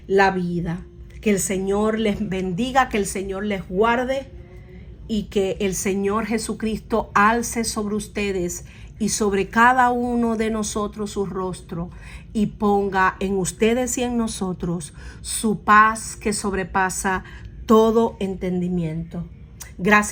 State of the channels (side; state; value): both; identical; correlation 1.00